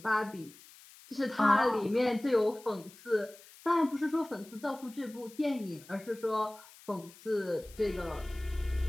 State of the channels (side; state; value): left; noise; hiss, 22 dB below the sound